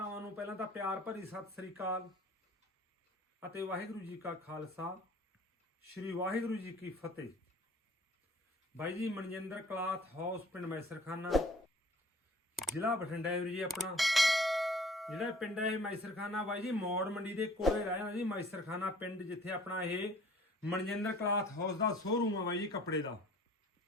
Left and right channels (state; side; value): normal; both; correlation 0.52